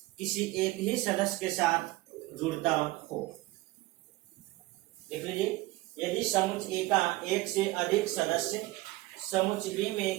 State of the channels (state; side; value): quieter; left; 19.1 dB